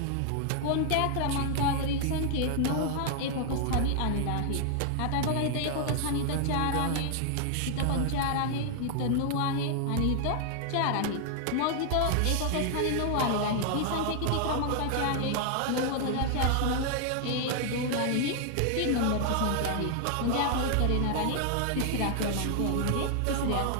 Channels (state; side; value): different; both; correlation 0.00